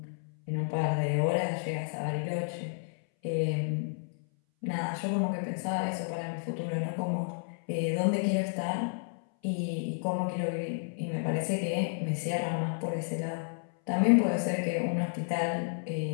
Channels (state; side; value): silent; right; 57 dB below the other